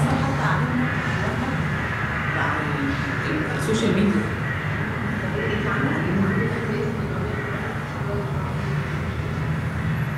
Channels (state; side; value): identical; both; correlation 1.00